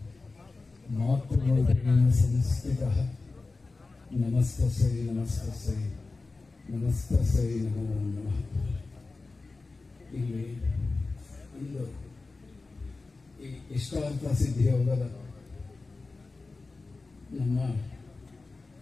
ಮಾತೃಮೂರ್ತಿನ ಸಂಸ್ಥಿತಃ ನಮಸ್ತಸ್ಯೈ ನಮಸ್ತಸ್ಯೈ ನಮಸ್ತಸ್ಯೈ ನಮೋ ನಮಃ. ಇಲ್ಲಿ ಇಂದು ಈ ಇಷ್ಟಾರ್ಥ ಸಿದ್ಧಿ ಯೋಗದ ನಮ್ಮ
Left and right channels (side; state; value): right; quieter; 3.7 dB